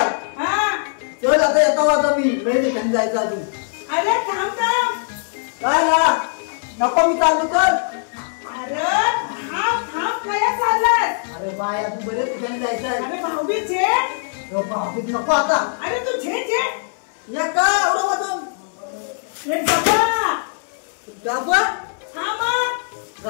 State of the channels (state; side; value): silent; right; 60 dB below the other